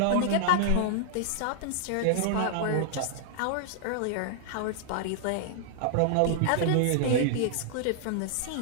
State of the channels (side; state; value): both; different; correlation -0.01